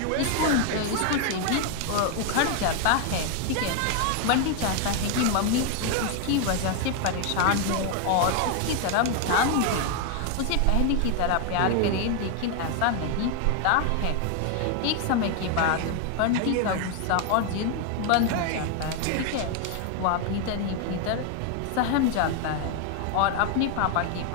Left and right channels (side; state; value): both; different; correlation 0.01